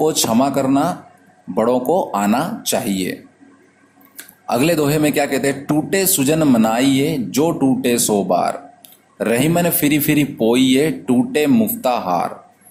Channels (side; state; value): both; identical; correlation 1.00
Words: क्षमा करना बड़ों को आना चाहिए। अगले दोहे में क्या कहते हैं, टूटे सुजन मनाइए जो टूटे सो बार, रहीमन फिरी फिरी पोइए टूटे मुफ्ता हार।